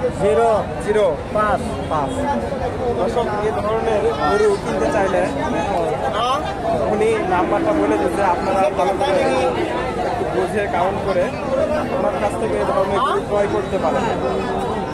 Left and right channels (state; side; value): identical; both; correlation 1.00